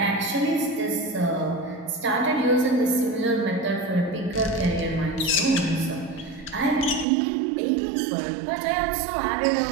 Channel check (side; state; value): left; drops out; at 7.1 s